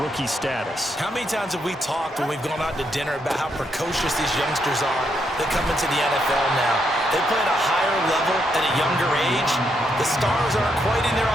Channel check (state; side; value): normal; both; correlation 0.78